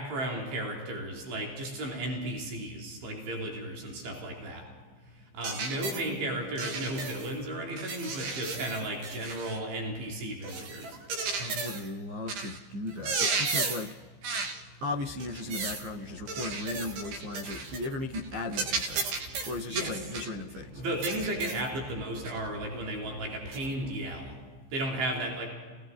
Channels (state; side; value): late; left; 15 ms